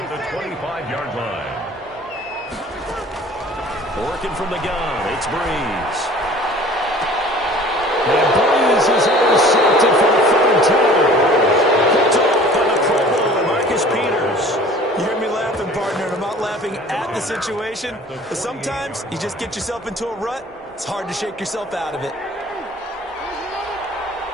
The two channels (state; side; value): normal; both; correlation 0.47